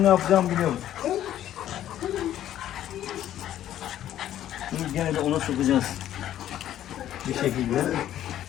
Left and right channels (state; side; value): quieter; right; 11.9 dB